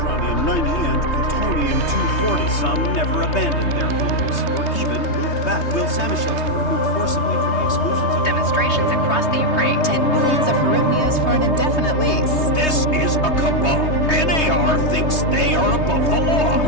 and plutonium-240. Some never abandoned their homes, or even moved back. Will Samoshells were removed forcibly from the exclusion zone. Demonstrations across the Ukraine. 10 billions of hryvnias for an indefinite lease. This is a cabal. NAR thinks they are above the law.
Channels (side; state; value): right; late; 3.2 ms